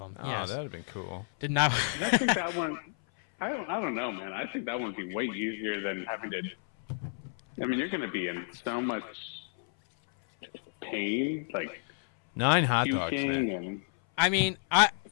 Oh, yes. that would have been cool. Did not. I think that one. I don't know, man. I think that would be way easier than having to. I mean, you're going to be in so much pain, like 9 hot dogs. And I mean, I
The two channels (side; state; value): right; silent; 57 dB below the other